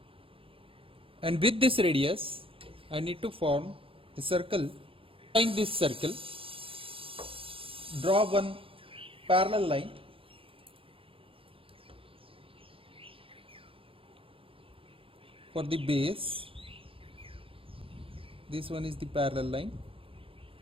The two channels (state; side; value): late; left; 0.26 ms